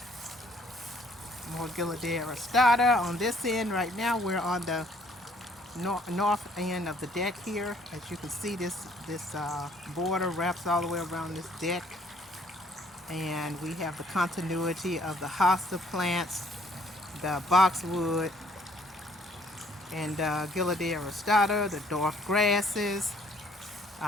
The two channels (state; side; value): normal; both; correlation 0.62